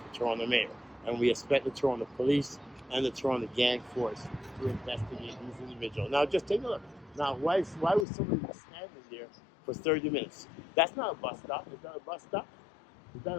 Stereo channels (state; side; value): drops out; right; at 8.1 s